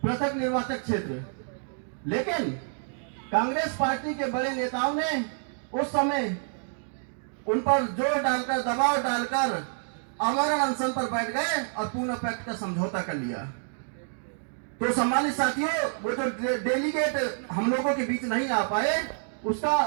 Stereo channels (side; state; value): left; silent; digital silence